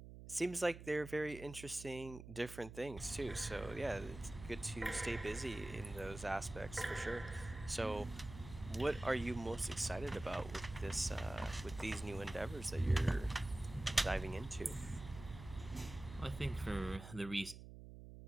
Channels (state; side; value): noise; right; hum, 13 dB below the sound